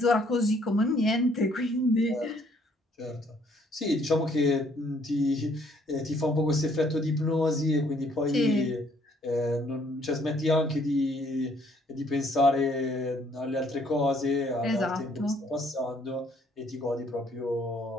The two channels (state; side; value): normal; both; correlation 0.65